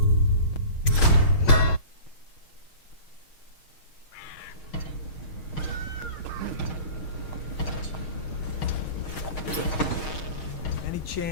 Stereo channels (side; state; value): right; late; 6.4 ms